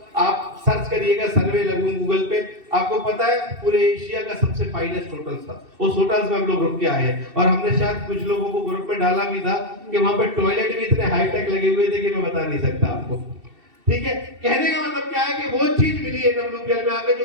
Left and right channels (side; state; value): left; late; 2.7 ms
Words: आप सर्च करिएगा, सर्वे लगून गूगल पे, आपको पता है पूरे एशिया का सबसे फाइनेस्ट होटल था। उस होटल्स में हम लोग रुक के आए हैं और हमने शायद कुछ लोगों को ग्रुप में डाला भी था कि वहां पे टॉयलेट भी इतने हाईटेक लगे हुए थे कि मैं बता नहीं सकता आपको। ठीक है, कहने का मतलब क्या है कि वो चीज मिली है WPL में आके